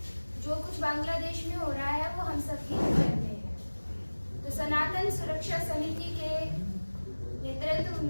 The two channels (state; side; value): inverted; both; correlation -1.00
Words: जो कुछ बांग्लादेश में हो रहा है वो हम सब ही जानते हैं। तो सनातन सुरक्षा समिति के नेतृत्व